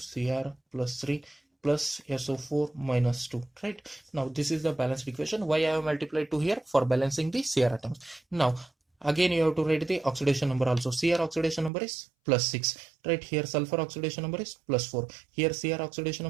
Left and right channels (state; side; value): drops out; left; at 11.7 s